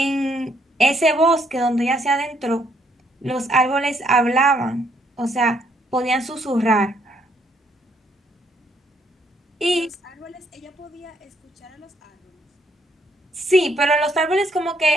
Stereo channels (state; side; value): normal; both; correlation 0.70